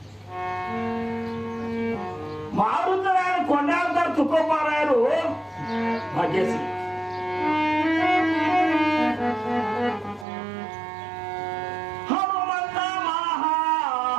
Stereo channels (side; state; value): left; drops out; at 10.2 s